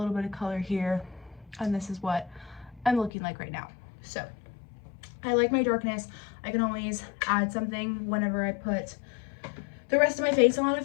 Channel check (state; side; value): drops out; right; at 3.1 s